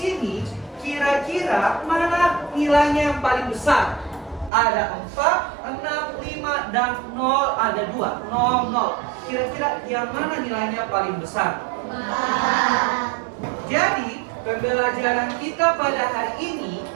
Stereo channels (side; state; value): left; drops out; at 4.5 s